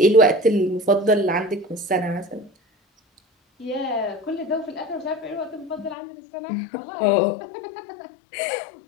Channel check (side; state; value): right; drops out; at 6.0 s